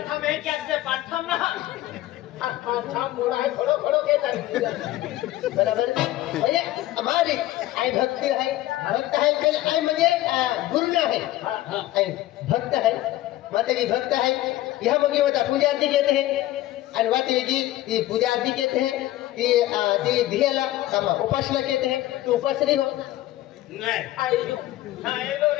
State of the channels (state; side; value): quieter; right; 15.5 dB